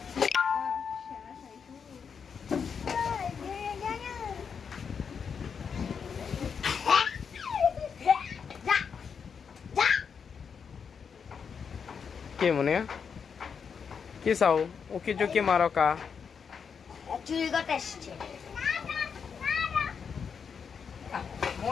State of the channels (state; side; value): quieter; right; 6.4 dB